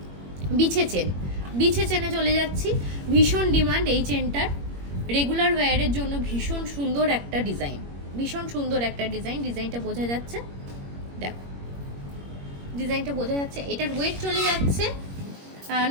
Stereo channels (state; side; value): late; left; 21 ms